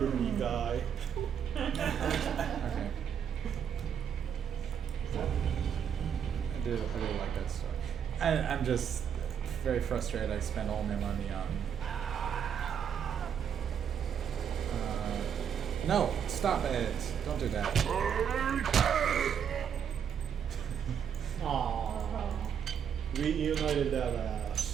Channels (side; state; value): left; quieter; 8.1 dB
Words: Me guy. Okay. I do like that story. I'm just very frustrated. I spent all my money on. No, stop it! Don't do that. Aww. Reunited that